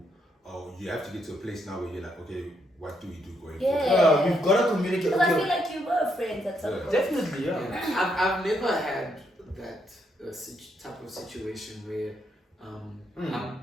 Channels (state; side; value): normal; both; correlation 0.76